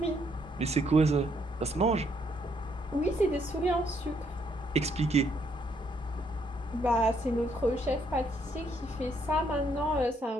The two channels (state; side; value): normal; both; correlation 0.71